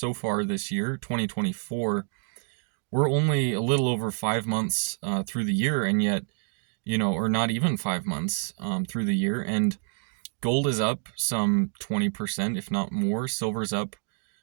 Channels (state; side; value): silent; left; digital silence